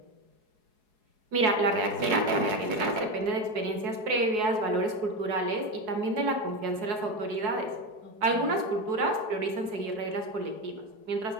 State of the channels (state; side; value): late; left; 4.7 ms